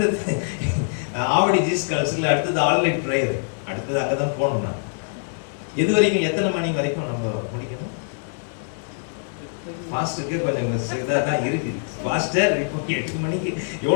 ஆவடி ஜீஸ் கால்ஸ்ல அடுத்தது ஆல்நைட் ப்ரேயர். அடுத்தது அங்கதான் போகணும். நான் எது வரைக்கும், எத்தனை மணி வரைக்கும் நம்ம முடிக்கணும்? பாஸ்டருக்கு கொஞ்சம் இதாக தான் இருக்கு. பாஸ்டர் இப்போ 8 மணிக்கு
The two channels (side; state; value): right; silent; digital silence